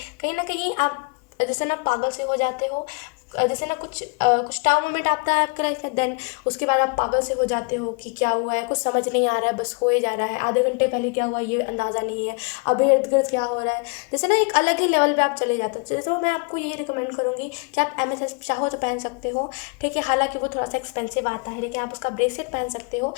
कहीं ना कहीं आप जैसे ना पागल से हो जाते हो, जैसे ना कुछ टाइम मोमेंट आता है आपके लाइफ में, देन उसके बाद आप पागल से हो जाते हो कि क्या हुआ है, कुछ समझ नहीं आ रहा है, बस हो ही जा रहा है। आधे घंटे पहले क्या हुआ ये अंदाज़ा नहीं है, अब इर्द गिर्द क्या हो रहा है, जैसे ना एक अलग ही लेवल पे आप चले जाते हो। तो मैं आपको यही रिकमेंड करूँगी कि आप एमेथिस्ट चाहो तो पहन सकते हो, ठीक है। हालांकि वो थोड़ा सा एक्सपेंसिव आता है, लेकिन आप उसका ब्रेसलेट पहन सकते हो।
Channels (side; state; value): right; quieter; 33.7 dB